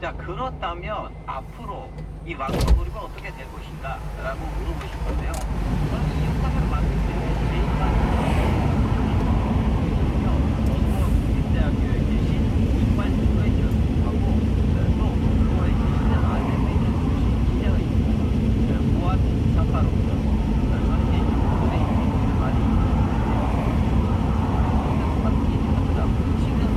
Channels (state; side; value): identical; both; correlation 1.00